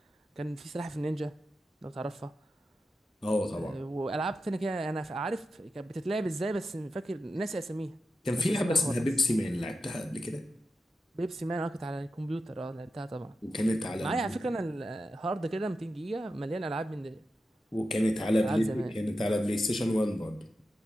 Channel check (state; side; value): normal; both; correlation 0.90